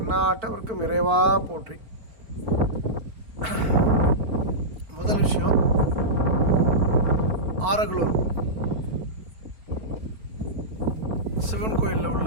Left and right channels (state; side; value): late; left; 4.5 ms